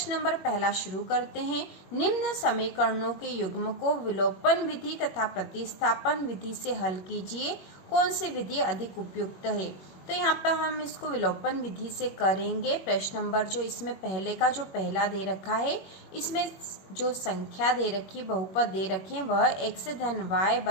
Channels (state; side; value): late; right; 21 ms